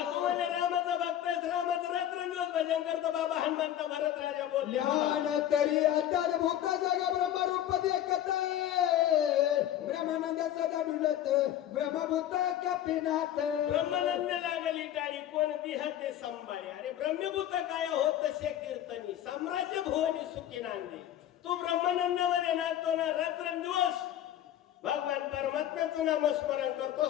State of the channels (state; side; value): quieter; right; 11.6 dB